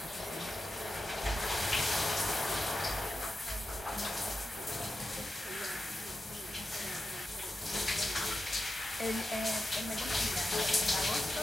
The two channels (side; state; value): both; normal; correlation 0.90